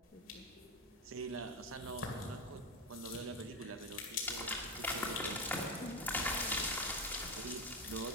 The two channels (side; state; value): both; normal; correlation 0.14